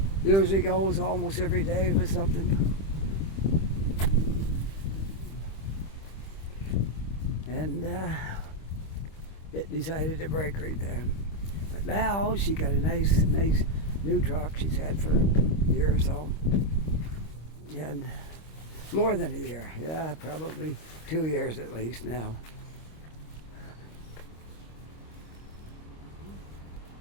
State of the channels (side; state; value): right; late; 25 ms